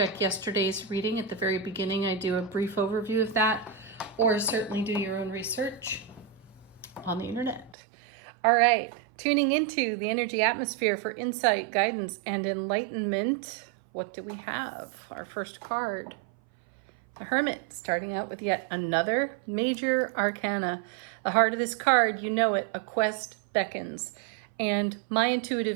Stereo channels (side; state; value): left; drops out; at 7.8 s